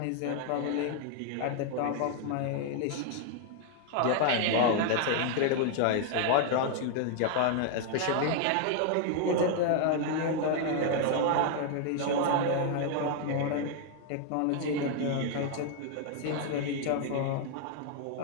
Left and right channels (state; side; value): different; both; correlation 0.00